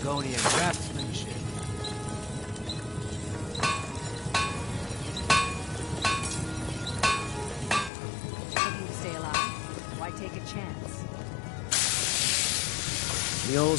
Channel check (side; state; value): right; drops out; at 7.9 s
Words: craftsmanship. Looking to stay alive? Why take a chance? The